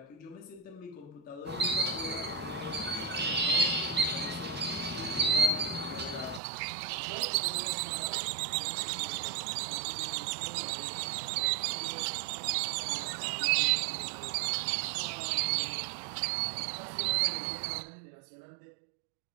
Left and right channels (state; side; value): drops out; left; at 6.4 s